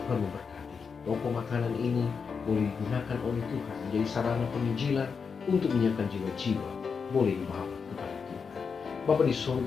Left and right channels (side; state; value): right; quieter; 5.7 dB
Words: Tuhan memberkati toko makanan ini boleh digunakan oleh Tuhan menjadi sarana penginjilan untuk menyiapkan jiwa-jiwa boleh dibawa kepada Tuhan. Bapa di